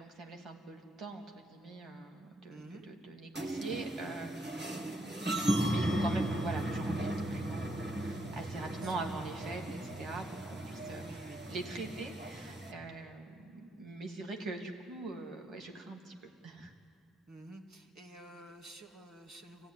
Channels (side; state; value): both; normal; correlation 0.76